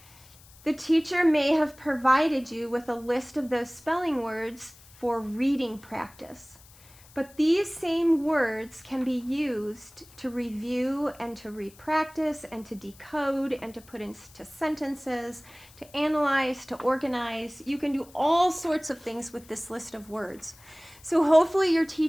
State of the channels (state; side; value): noise; left; hiss, 24 dB below the sound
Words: the teacher may have provided you with a list of those spelling words for reading practice. But these same words can be used to review and to repractice and to decode and to put into sentences, to analyze, to organize. You can do all sorts of things with this list of words. So hopefully your